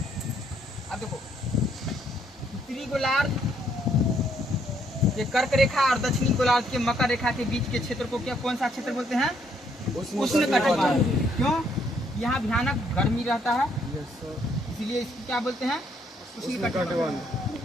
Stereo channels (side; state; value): both; normal; correlation 0.70